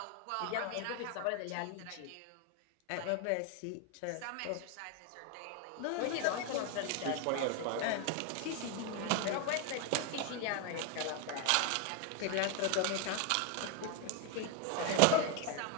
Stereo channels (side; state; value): both; different; correlation 0.01